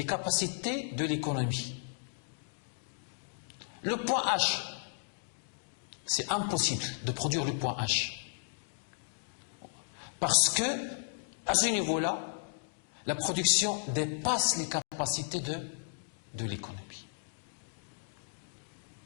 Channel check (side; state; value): right; silent; digital silence